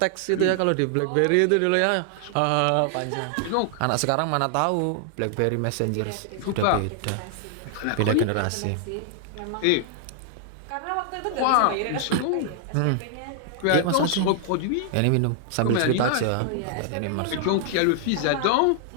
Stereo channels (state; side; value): different; both; correlation 0.00